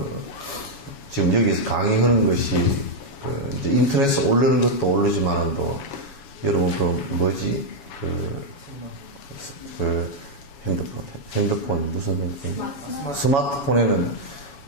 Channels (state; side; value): late; right; 7.2 ms